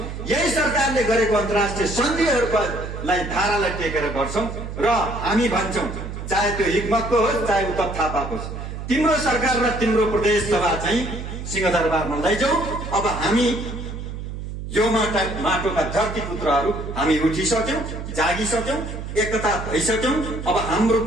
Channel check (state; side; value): noise; right; hum, 8 dB below the sound